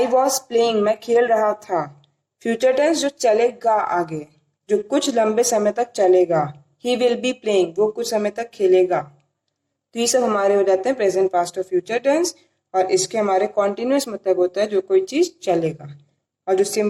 वॉज प्लेइंग, मैं खेल रहा था। फ्यूचर टेंस जो चलेगा आगे, जो कुछ लंबे समय तक चलेगा, ही विल बी प्लेइंग, वो कुछ समय तक खेलेगा। तो ये सब हमारे हो जाते हैं प्रेजेंट, पास्ट और फ्यूचर टेंस। और इसके हमारे कॉन्टिन्यूअस मतलब होता है जो कोई चीज चलेगा, और जो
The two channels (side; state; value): both; identical; correlation 1.00